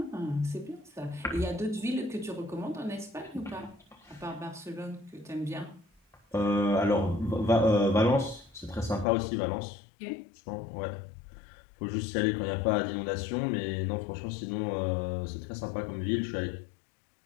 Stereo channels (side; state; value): right; drops out; at 9.1 s